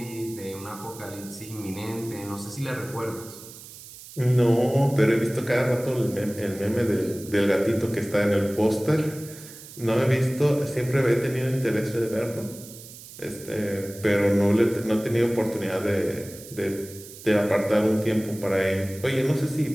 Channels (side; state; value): right; noise; hiss, 16 dB below the sound